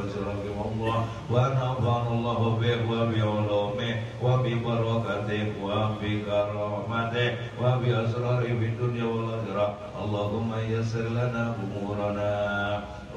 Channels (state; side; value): identical; both; correlation 1.00